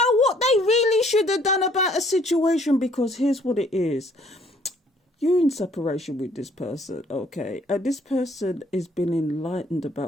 what they really should have done about a situation? Because here's what it is. You're in separation with this person, okay? And this person has been enlightened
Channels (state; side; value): normal; both; correlation 0.61